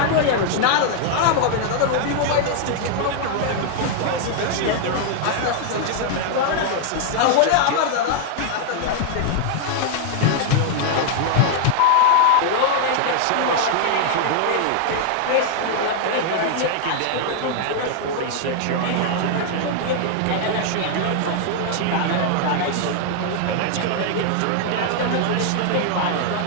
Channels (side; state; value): both; different; correlation 0.00